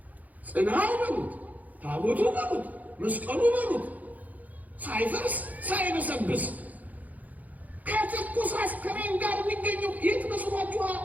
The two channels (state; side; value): late; left; 0.079 ms